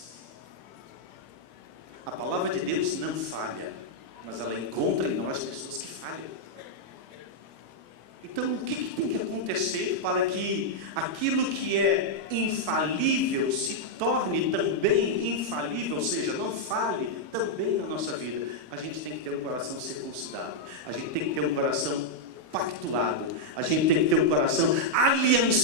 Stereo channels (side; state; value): left; late; 26 ms